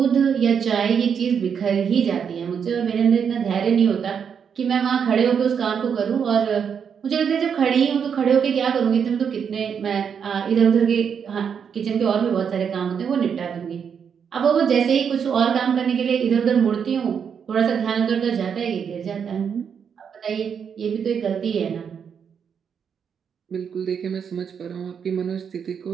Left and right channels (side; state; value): left; quieter; 7.2 dB